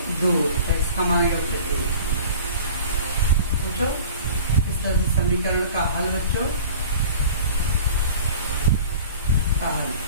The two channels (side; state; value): both; inverted; correlation -0.42